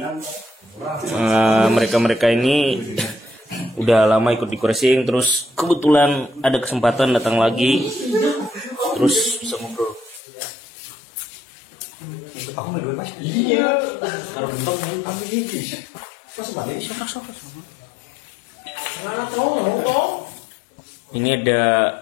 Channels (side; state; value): right; drops out; at 10.2 s